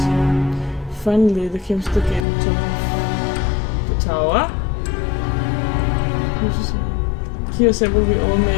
Finally, they came to the gate and took the tower. Here assembled we all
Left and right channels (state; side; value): drops out; right; at 2.2 s